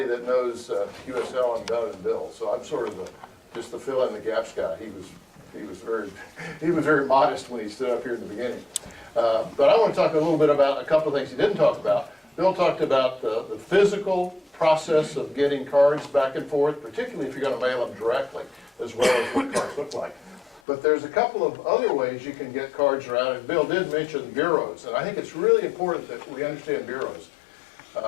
that knows QSL and better than Bill, so I'm sort of just the fill in the gaps guy. He was very modest when he stood up here in the beginning. But I want to talk a little bit about a couple of things he didn't talk about. Bill talked about the physical process of getting cards back and forth, particularly if you're going to mail them directly, as well as what cards look like. But there's a couple of other ways you can get cards around, and Bill did mention bureaus, and I think it's really important that we understand bureaus.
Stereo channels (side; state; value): right; drops out; at 20.6 s